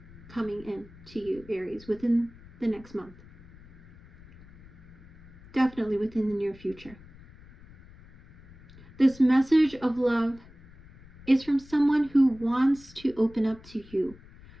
coming in to you, Aries, within the next month. Definitely within the near future. This message of love is from someone who wants to open up to you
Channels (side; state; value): left; noise; rumble, 22 dB below the sound